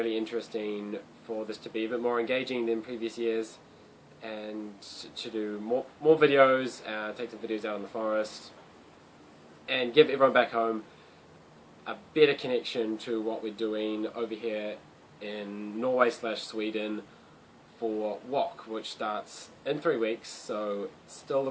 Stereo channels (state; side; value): identical; both; correlation 1.00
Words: interesting for this to be a bit more engaging than previous years, and to do more videos, take some videos out in the forest, and give everyone back home a better connection to what we're doing over here in Norway/Sweden for WOC, which starts in 3 weeks, so it's still